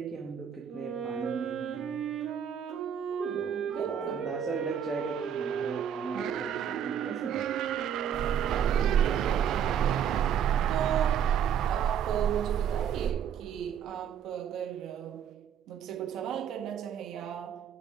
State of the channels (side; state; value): left; quieter; 8.6 dB